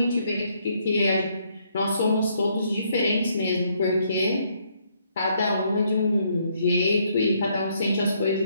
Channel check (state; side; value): inverted; both; correlation -0.71